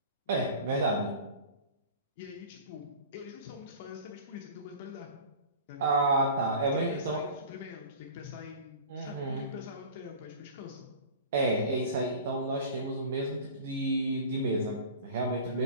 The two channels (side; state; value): both; inverted; correlation -0.38